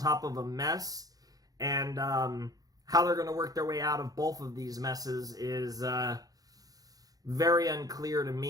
of a mess, and how they're going to work their way out of both of these messes is very unclear to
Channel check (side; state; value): left; late; 0.18 ms